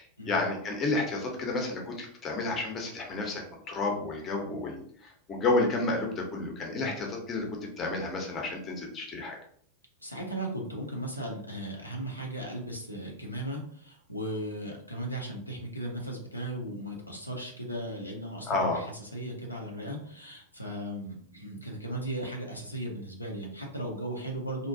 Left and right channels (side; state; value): both; normal; correlation 0.02